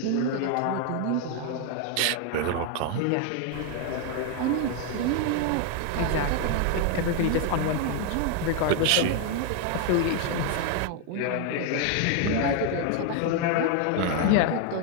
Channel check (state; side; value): different; both; correlation 0.01